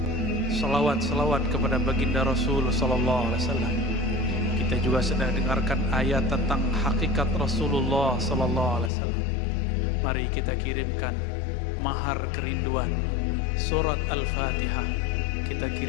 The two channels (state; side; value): drops out; right; at 8.9 s